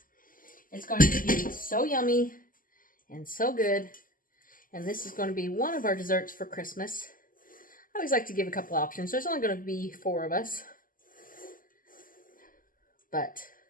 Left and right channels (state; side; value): late; right; 0.41 ms